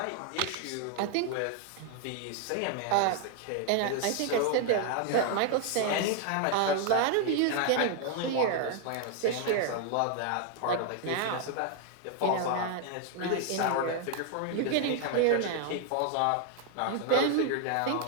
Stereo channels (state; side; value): different; both; correlation 0.00